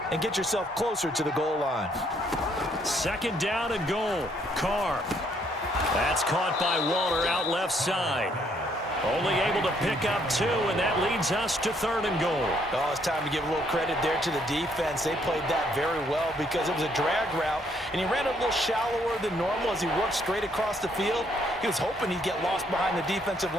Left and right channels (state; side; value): normal; both; correlation 0.69